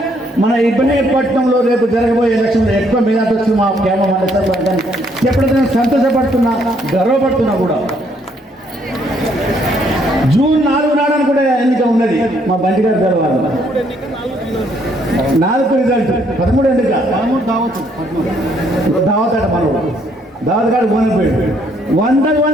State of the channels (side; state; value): both; normal; correlation 0.69